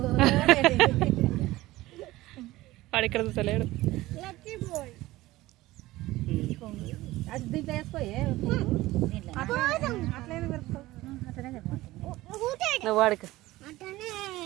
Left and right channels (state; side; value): quieter; left; 17.8 dB